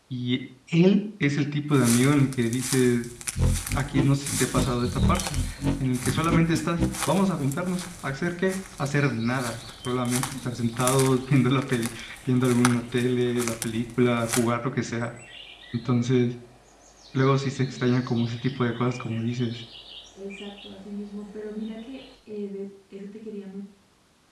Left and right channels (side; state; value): both; identical; correlation 1.00